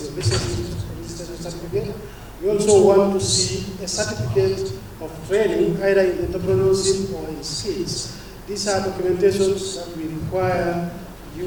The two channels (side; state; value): both; identical; correlation 1.00